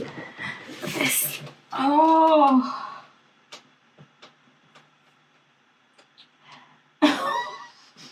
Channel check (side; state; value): both; identical; correlation 1.00